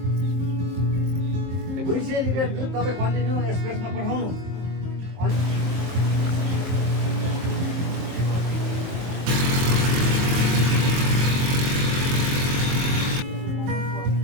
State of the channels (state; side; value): late; left; 23 ms